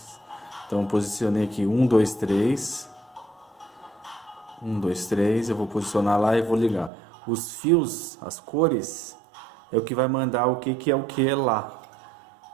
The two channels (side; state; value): left; drops out; at 6.9 s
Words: Então eu posicionei aqui 1, 2, 3. 1, 2, 3, eu vou posicionar lá e vou ligar. Os fios, as cores, é o que vai mandar o que é o que lá.